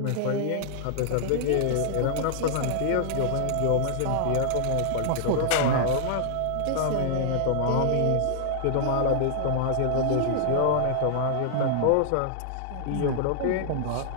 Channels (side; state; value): both; different; correlation -0.01